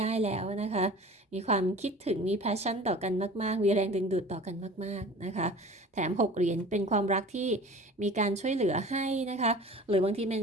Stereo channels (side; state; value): both; normal; correlation 0.41